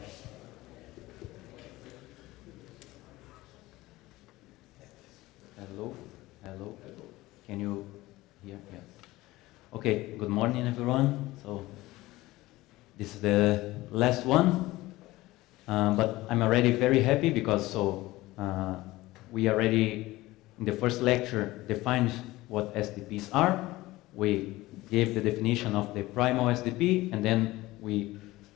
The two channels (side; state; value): right; quieter; 18.6 dB